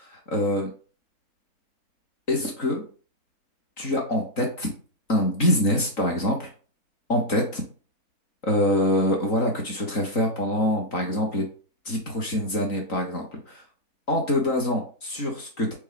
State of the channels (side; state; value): right; late; 3.9 ms